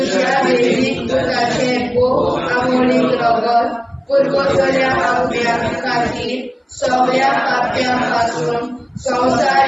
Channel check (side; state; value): both; identical; correlation 1.00